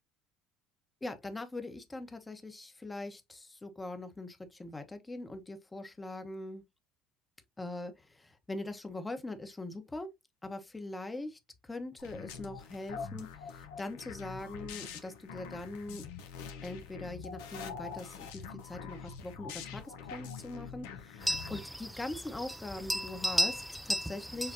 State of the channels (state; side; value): normal; both; correlation 0.87